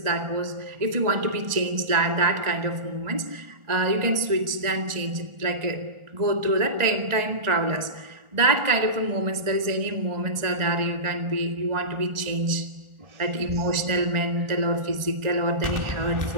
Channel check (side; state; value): left; late; 1.4 ms